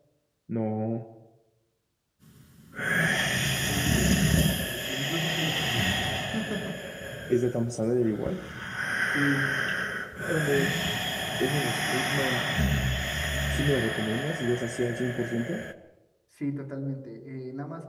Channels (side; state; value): both; identical; correlation 1.00